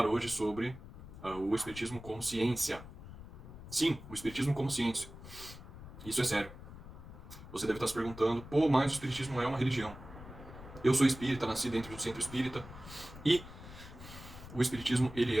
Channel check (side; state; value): left; noise; rumble, 15 dB below the sound